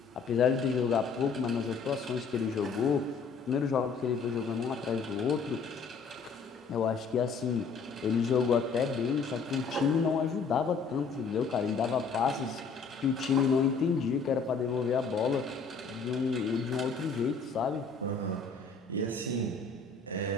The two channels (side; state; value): right; quieter; 5.0 dB